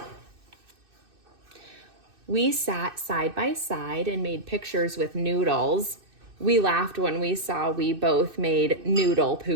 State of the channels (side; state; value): left; late; 2.6 ms